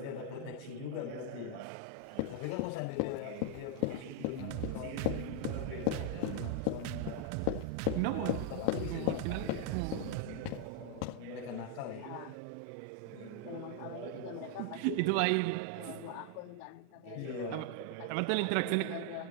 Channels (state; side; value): different; both; correlation 0.00